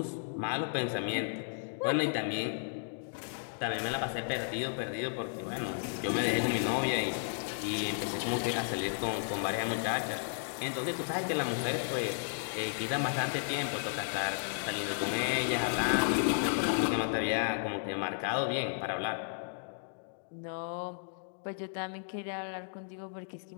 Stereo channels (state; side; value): silent; right; digital silence